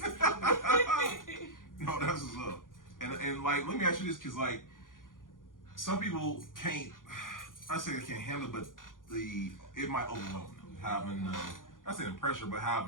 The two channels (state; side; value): late; right; 0.89 ms